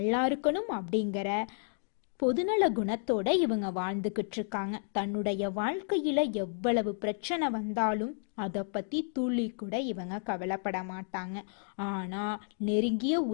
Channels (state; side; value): silent; right; 57 dB below the other